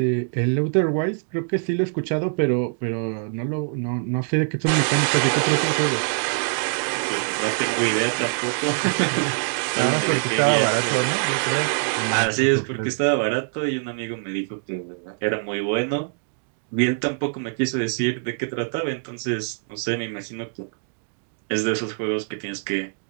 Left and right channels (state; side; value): silent; left; digital silence